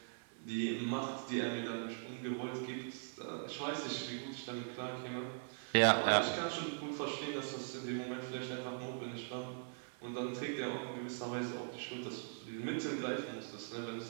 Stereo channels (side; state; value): left; silent; 51 dB below the other